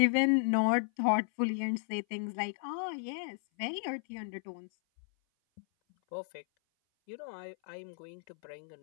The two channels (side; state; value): right; silent; 55 dB below the other